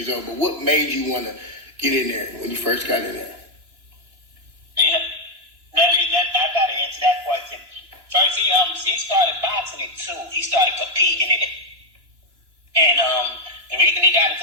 old, but what made you want to get in there when you first got in there? Yeah. I got to answer that question. First, he started boxing at 2. He started competing in it. And the reason he got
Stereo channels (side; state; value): left; late; 2.9 ms